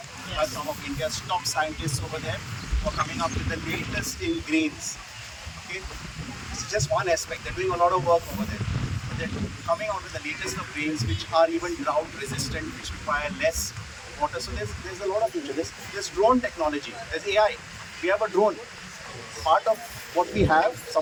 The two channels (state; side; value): identical; both; correlation 1.00